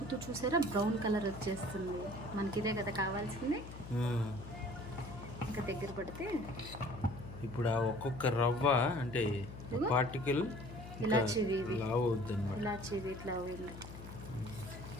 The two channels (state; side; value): noise; left; hum, 12 dB below the sound